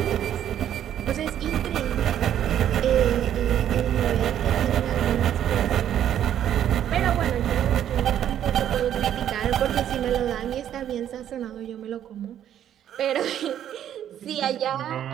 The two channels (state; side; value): quieter; left; 10.5 dB